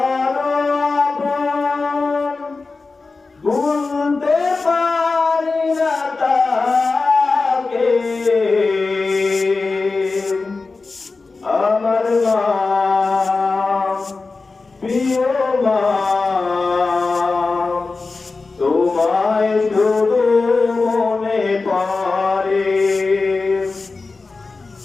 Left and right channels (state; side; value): quieter; right; 3.9 dB